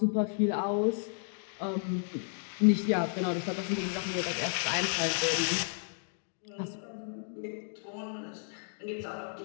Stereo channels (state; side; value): silent; right; digital silence